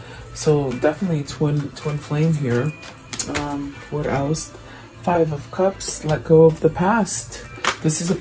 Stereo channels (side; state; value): both; identical; correlation 1.00